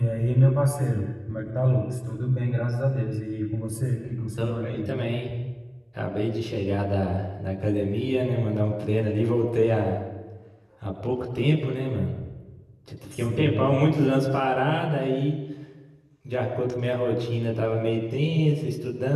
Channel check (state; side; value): identical; both; correlation 1.00